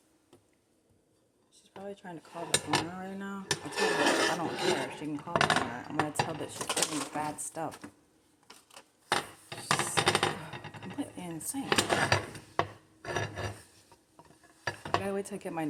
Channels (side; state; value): both; identical; correlation 1.00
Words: She's probably trying to call the owner right now. I'll tell her I don't care. She can call the owner. I'm going to tell that she's putting bad stuff. She's completely insane. I gotta wait till I get my